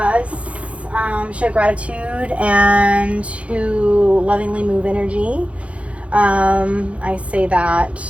show gratitude and to lovingly move energy. I say that,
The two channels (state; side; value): late; left; 0.063 ms